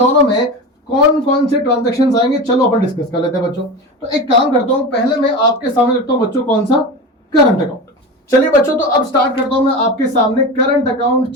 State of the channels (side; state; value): both; normal; correlation 0.26